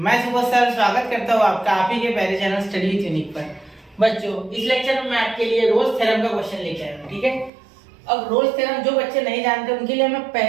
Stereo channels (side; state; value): left; drops out; at 7.5 s